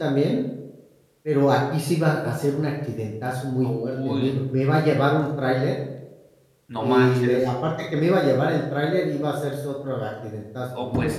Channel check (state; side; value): identical; both; correlation 1.00